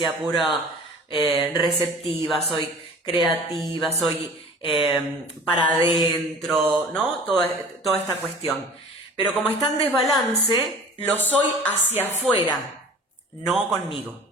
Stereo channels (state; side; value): normal; both; correlation 0.44